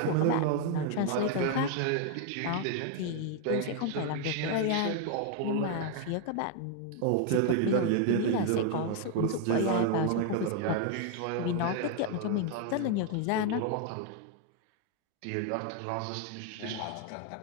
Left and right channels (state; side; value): different; both; correlation 0.00